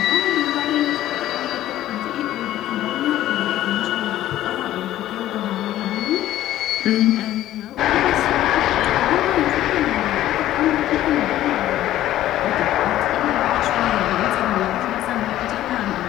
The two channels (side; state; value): right; quieter; 13.7 dB